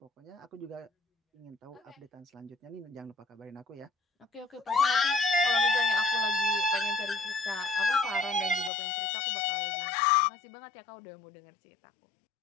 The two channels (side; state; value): right; drops out; at 8.7 s